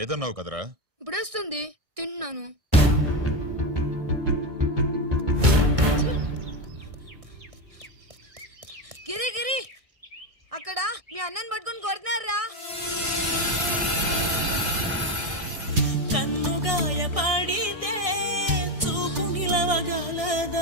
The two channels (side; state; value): left; late; 1.6 ms